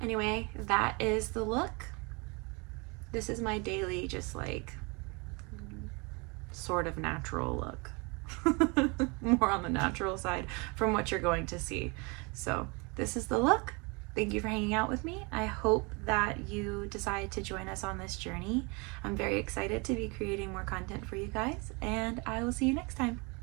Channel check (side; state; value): left; quieter; 29.6 dB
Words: Anyway, that is the look. This is my daily, just like, sort of natural look. More on the natural side from what you're going to see. So this is the look. Thank you for hanging out with me. I hope that you decide to join us on this journey. I'm very excited to be creating more content for you guys, and I will see you next time.